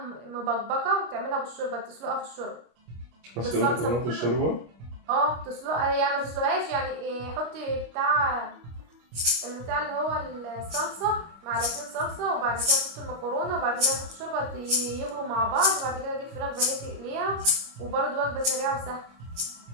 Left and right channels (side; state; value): left; late; 25 ms